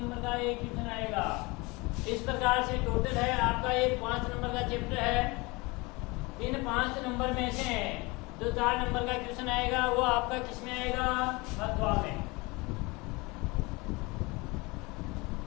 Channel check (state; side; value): quieter; right; 25.0 dB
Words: का एक क्वेश्चन आएगा। इस प्रकार से टोटल है आपका ये 5 नंबर का चैप्टर है। इन 5 नंबर में से जो 4 नंबर का क्वेश्चन आएगा वो आपका किस में आएगा? अथवा में।